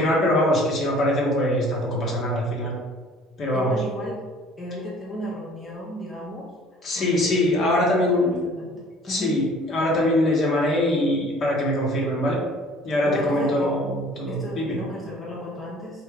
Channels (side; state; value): both; normal; correlation 0.51